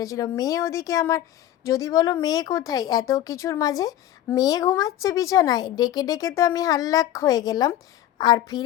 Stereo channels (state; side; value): quieter; right; 12.2 dB